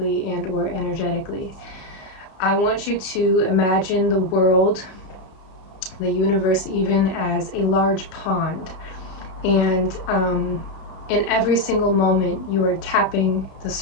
and or energetically. I want you to imagine the world, the universe, even as a large pond. And in every single moment, you are tapping the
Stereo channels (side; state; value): right; late; 32 ms